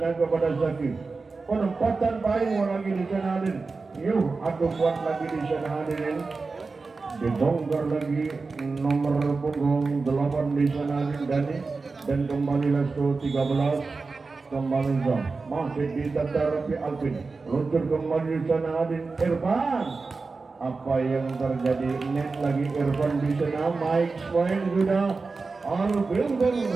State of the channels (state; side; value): quieter; left; 4.1 dB